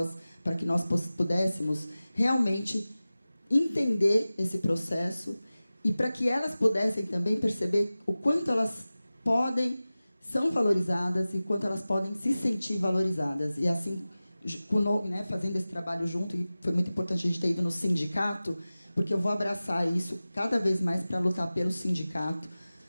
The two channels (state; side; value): inverted; both; correlation -0.96